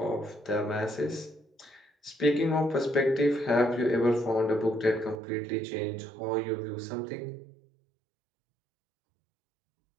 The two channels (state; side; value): drops out; left; at 5.2 s